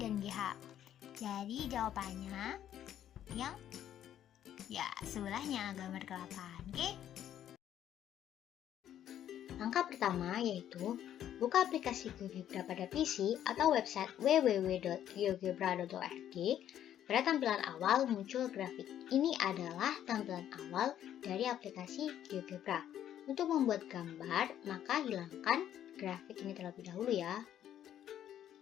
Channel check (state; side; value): quieter; right; 10.8 dB